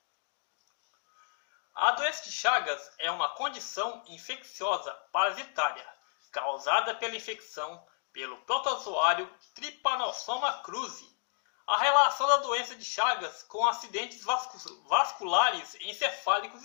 A doença de Chagas é uma condição infecciosa parasitária causada pela infecção pelo protozoário Trypanosoma cruzi. A relação da doença de Chagas com acidentes vasculares encefálicos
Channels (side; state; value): right; silent; digital silence